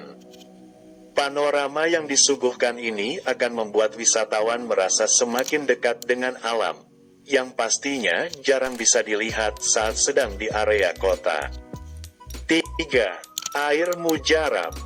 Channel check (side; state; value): both; identical; correlation 1.00